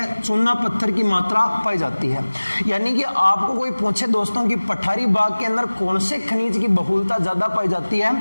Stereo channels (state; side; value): inverted; both; correlation -1.00